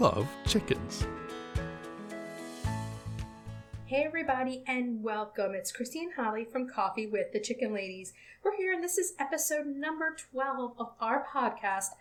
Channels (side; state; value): both; identical; correlation 1.00